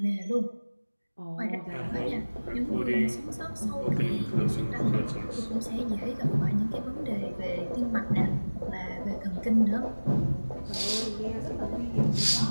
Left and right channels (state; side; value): inverted; both; correlation -1.00